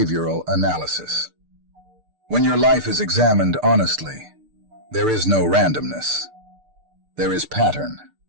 analysis. When your life is examined honestly, there is no randomness. There is pattern.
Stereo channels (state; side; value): late; left; 6.7 ms